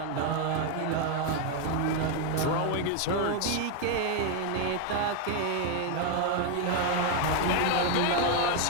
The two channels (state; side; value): different; both; correlation 0.01